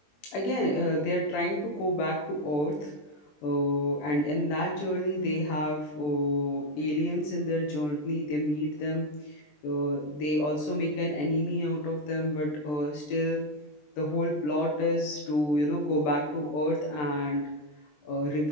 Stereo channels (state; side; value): late; right; 20 ms